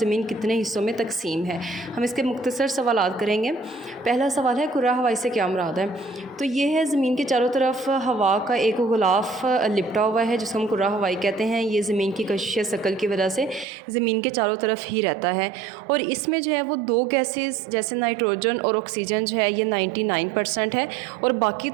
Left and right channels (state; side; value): drops out; left; at 13.7 s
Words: कितने हिस्सों में तकसीम है। हम इसके मुख्तसर सवालात करेंगे। पहला सवाल है कुर्रा हवाई से क्या मुराद है। तो ये है ज़मीन के चारों तरफ हवा का एक गुलाफ लिपटा हुआ है जिसको हम कुर्रा हवाई कहते हैं। ये ज़मीन की कशिश शकल की वजह से ज़मीन के चारों तरफ ही रहता है और इसमें जो है वो दो गैसेस जैसे नाइट्रोजन और ऑक्सीजन जो है ये 99% है और बाकी